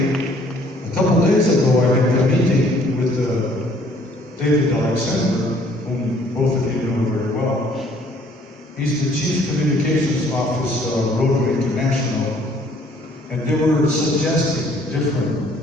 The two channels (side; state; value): both; normal; correlation 0.60